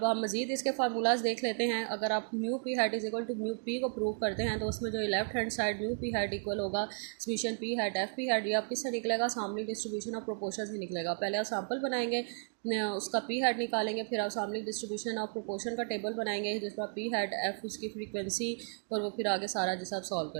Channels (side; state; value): left; silent; digital silence